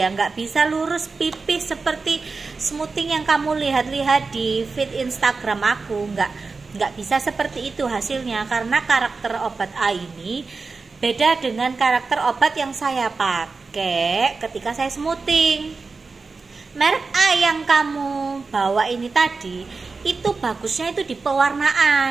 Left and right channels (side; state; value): left; quieter; 4.3 dB